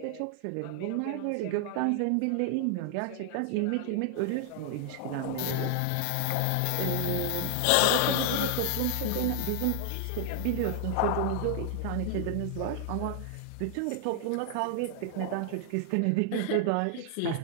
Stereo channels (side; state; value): both; different; correlation 0.00